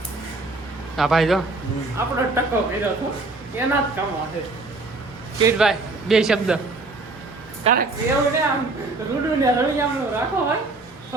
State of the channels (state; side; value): quieter; left; 3.3 dB